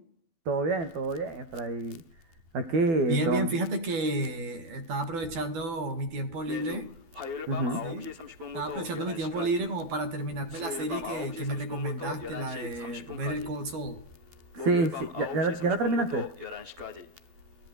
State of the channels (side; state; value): left; late; 12 ms